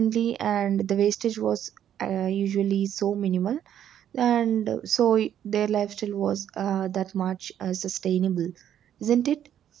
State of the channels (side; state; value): left; quieter; 10.2 dB